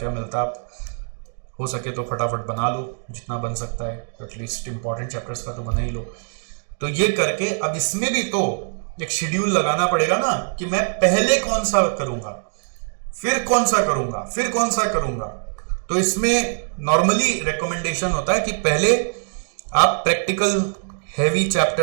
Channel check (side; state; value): left; silent; digital silence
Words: मिलता है, आप हो सके तो फटाफट बना लो जितना बन सकता है, एटलीस्ट इंपॉर्टेंट चैप्टर्स का तो बना ही लो। तो ये करके अब इसमें भी तो एक शेड्यूल लगाना पड़ेगा ना, कि मैं पहले कौन सा करूंगा, फिर कौन सा करूंगा, फिर कौन सा करूंगा। तो इसमें नॉर्मली रिकमेंडेशन होता है कि पहले आप प्रैक्टिकल हैवी